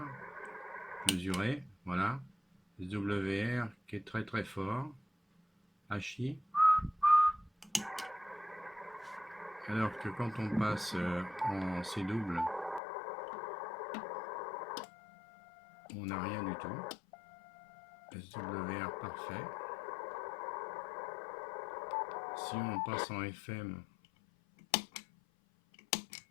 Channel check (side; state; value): right; drops out; at 12.8 s